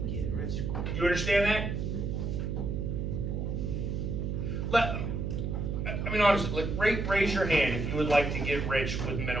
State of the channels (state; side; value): noise; right; hum, 2 dB below the sound